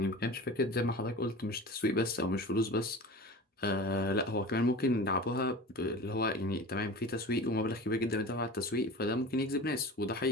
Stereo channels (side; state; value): both; normal; correlation 0.35